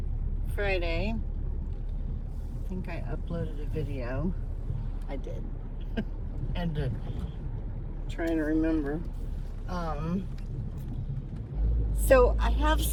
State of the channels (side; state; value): both; identical; correlation 1.00